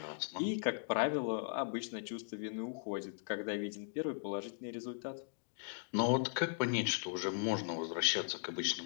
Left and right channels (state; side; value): silent; right; digital silence